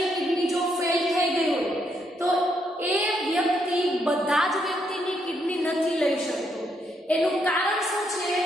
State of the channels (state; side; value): normal; both; correlation 0.76